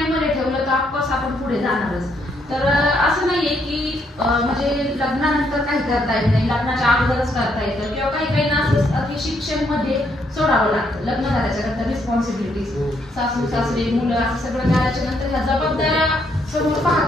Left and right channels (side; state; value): both; normal; correlation 0.73